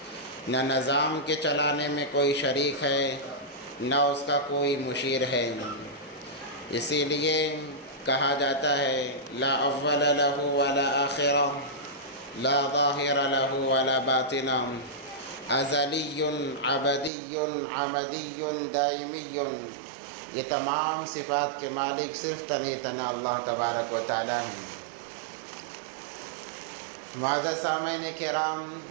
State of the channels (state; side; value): drops out; left; at 17.1 s